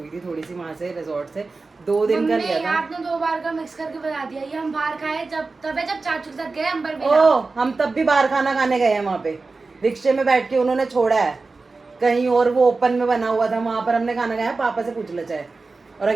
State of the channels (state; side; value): quieter; left; 3.9 dB